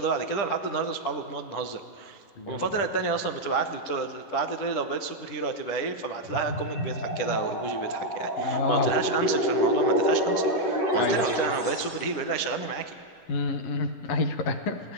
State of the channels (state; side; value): late; right; 10 ms